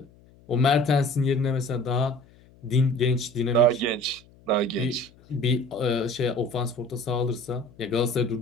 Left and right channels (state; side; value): noise; left; hum, 27 dB below the sound